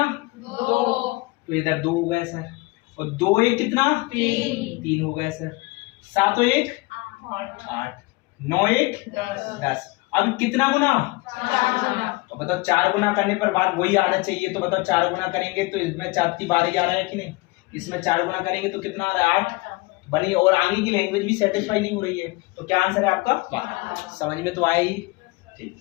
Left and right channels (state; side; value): quieter; right; 23.6 dB